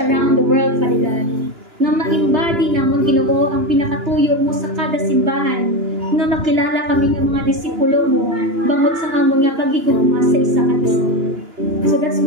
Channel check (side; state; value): left; late; 2.9 ms